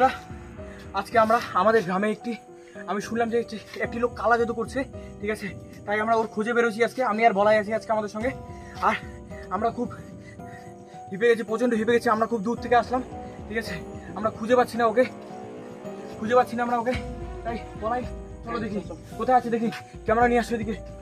আজকে আমরা আমাদের গ্রামে আমি শুনলাম যে একটি লোক কালা জাদু করছে, ঠিক আছে? তাই আমরা ওর খুঁজে বেরোছি আজকে। আমি আর বলাই আছি আজকে আমাদের সঙ্গে। আর আমরা খুব হিপে গেছি, প্রচণ্ড হিপে গেছি। আমরা খুব দূর থেকে আসলাম, ঠিক আছে? আমরা খুঁজে পাচ্ছি না ওকে, আমরা ওকে। তাই বলাই, চলো দেখি কোথায় আছে, দেখি। ক্যামেরা নিয়ে আসো এদিকে।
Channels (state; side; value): identical; both; correlation 1.00